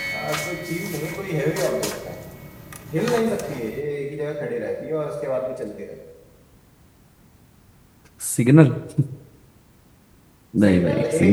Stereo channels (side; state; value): both; identical; correlation 1.00